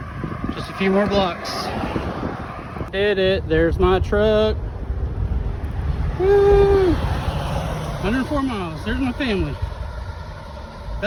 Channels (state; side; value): identical; both; correlation 1.00